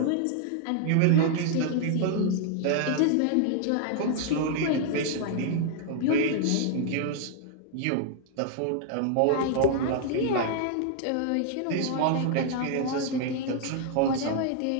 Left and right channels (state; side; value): different; both; correlation 0.00